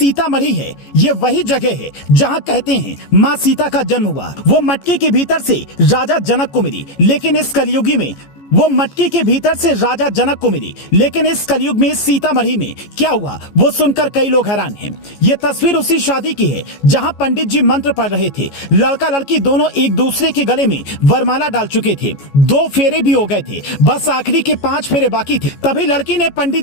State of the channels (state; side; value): late; right; 14 ms